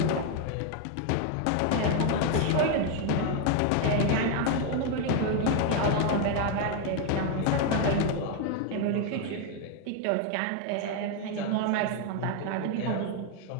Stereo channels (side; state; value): both; different; correlation 0.01